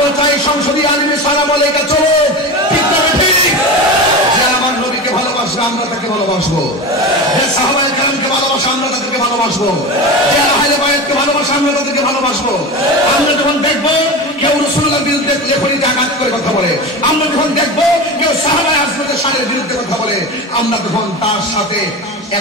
চাই সংসদীয় আইনে সালাম আলাইকা চলো ঠিক না ঠিক যে আমার নবীকে ভালোবাসবে আমরা তাকে ভালোবাসবো যে সাহাবায়ে কেরামকে ভালোবাসে আমরা তাদেরকে ভালোবাসবো যে আহলে বায়াতকে ভালোবাসে আমরা তাদেরকে ভালোবাসবো আমরা যখন দেখবো কেউ রাসূলুল্লাহর বিরুদ্ধে লেখনীতে আঘাত করে কথা বলে আমরা যখন দেখবো কেউ সাহাবায়ে আজমতের শানের বিরুদ্ধে কথা বলে আমরা তখন তার সাথে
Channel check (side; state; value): both; normal; correlation 0.26